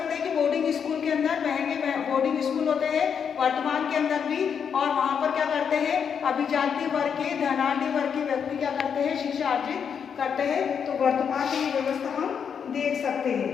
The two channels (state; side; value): quieter; right; 7.2 dB